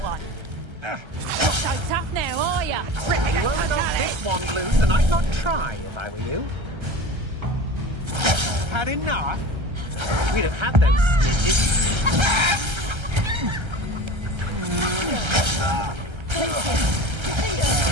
one! Not so tough now, are ya? You won't knock this one loose, and I'd not try if I were you. Had enough? We'd have had those snitches.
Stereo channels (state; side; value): late; left; 1.3 ms